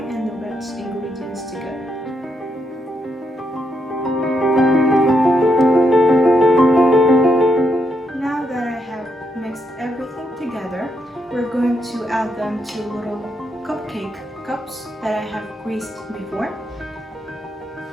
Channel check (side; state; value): both; normal; correlation 0.79